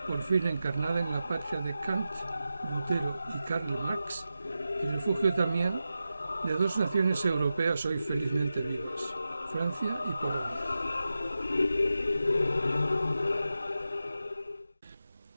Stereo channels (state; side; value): inverted; both; correlation -0.91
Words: por fin encarnada en la patria de Kant, Lutero y Karl Marx, y refugio también de dos naciones europeas hoy felizmente vivas, Francia y Polonia.